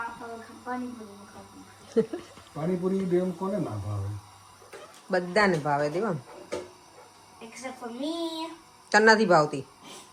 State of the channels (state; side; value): identical; both; correlation 1.00